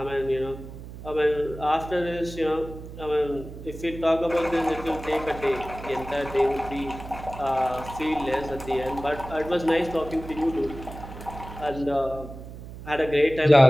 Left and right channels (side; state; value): right; noise; hum, 13 dB below the sound